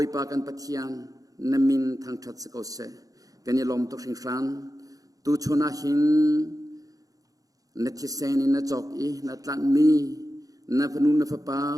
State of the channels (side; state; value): left; late; 0.17 ms